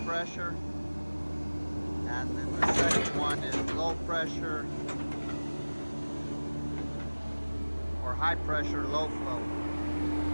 pressure. And then the second one is low pressure or high pressure, low flow.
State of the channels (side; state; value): both; inverted; correlation -1.00